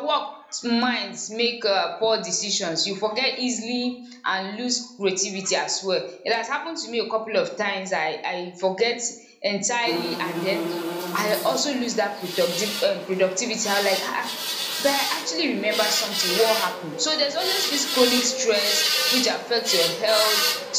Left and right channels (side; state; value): both; identical; correlation 1.00